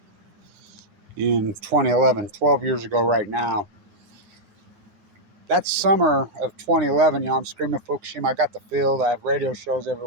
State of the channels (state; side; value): late; left; 9.9 ms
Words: in 2011, 12 years ago right now. That summer of 2011, I'm screaming Fukushima. I got the field. I have radio shows